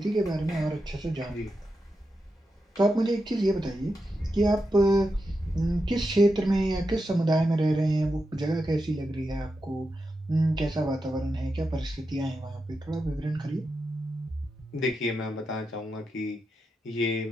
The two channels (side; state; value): both; normal; correlation 0.88